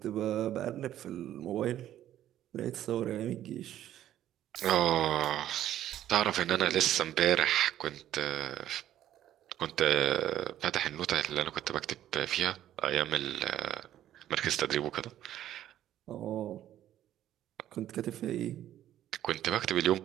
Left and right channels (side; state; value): left; quieter; 12.1 dB